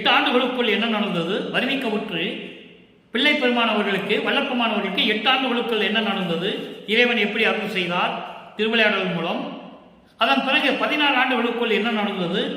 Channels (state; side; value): identical; both; correlation 1.00